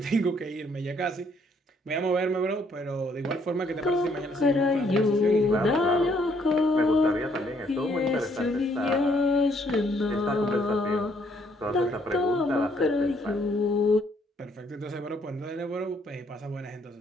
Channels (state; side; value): normal; both; correlation 0.68